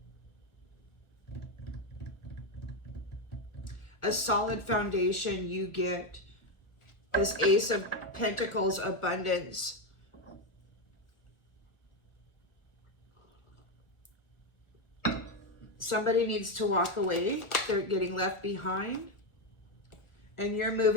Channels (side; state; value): right; late; 1.4 ms